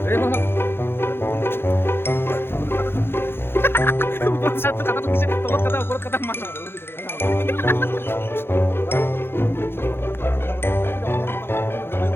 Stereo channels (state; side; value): late; right; 0.11 ms